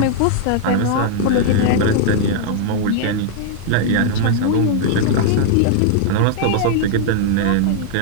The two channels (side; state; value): both; different; correlation 0.00